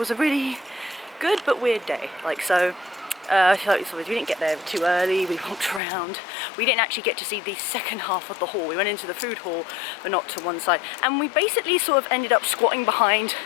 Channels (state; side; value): drops out; right; at 5.8 s